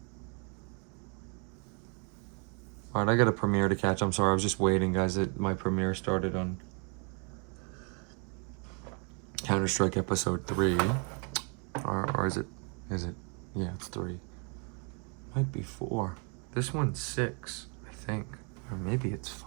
Alright, I got a premiere to catch. I'm sorry, I was just waiting, guys. My premiere started on Counter-Strike episode 3. Or is it? Yeah, it's 3. Might be 4. This one's 6, I think. Or maybe it's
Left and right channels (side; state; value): left; quieter; 37.0 dB